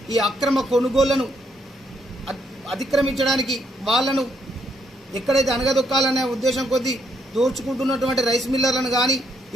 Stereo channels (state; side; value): normal; both; correlation 0.74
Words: ఈ అక్రమ కొనుగోళ్లను అతిక్రమించడానికి వాళ్లను ఎక్కడైతే అణగదొక్కాలనే ఉద్దేశం కొద్దీ దోచుకుంటున్నటువంటి రైస్ మిల్లర్లను కానీ